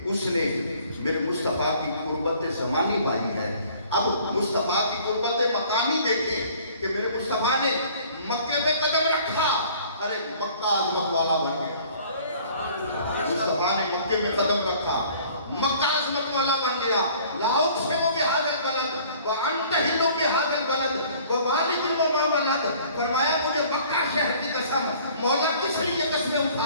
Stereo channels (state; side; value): inverted; both; correlation -0.53